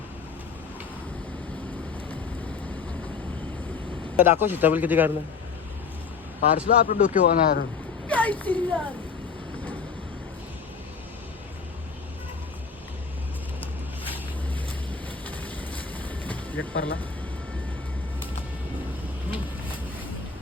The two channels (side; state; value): right; quieter; 5.5 dB